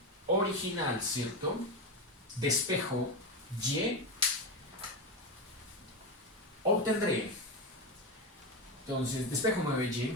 original, ¿cierto?, despejo y, obtendré, entonces, despejo 9y,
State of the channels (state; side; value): normal; both; correlation 0.15